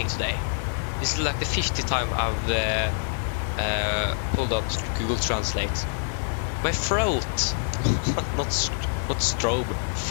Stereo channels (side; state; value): right; silent; digital silence